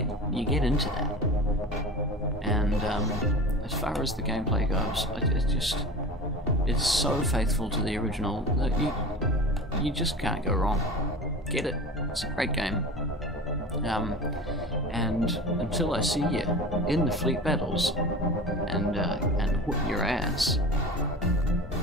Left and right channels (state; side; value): normal; both; correlation 0.34